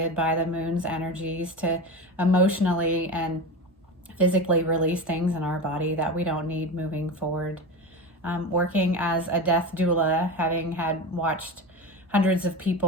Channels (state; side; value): normal; both; correlation 0.24